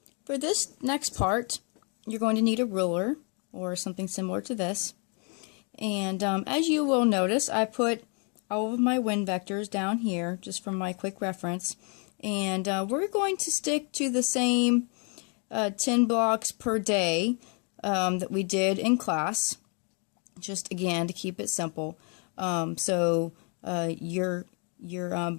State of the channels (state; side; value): quieter; right; 37.3 dB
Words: for this next part, you're going to need a ruler or something similar to this. And as you will notice, I put all of my wind vectors down here just for my quick reference. And we're going to stick to the same 10 blocks per day that we did in class, just again to keep it simple. So your